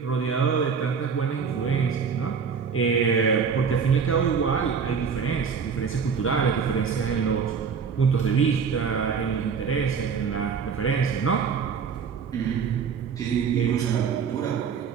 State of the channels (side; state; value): left; quieter; 6.2 dB